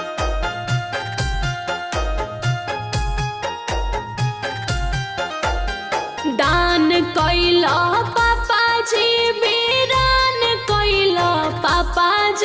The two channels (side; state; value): both; identical; correlation 1.00